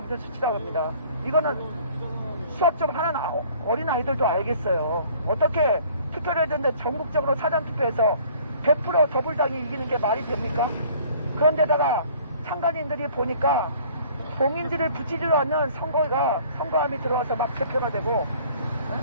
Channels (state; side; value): inverted; both; correlation -0.53